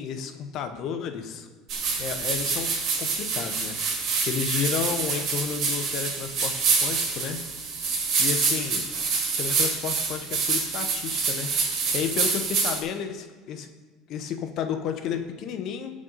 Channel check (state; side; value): normal; both; correlation 0.40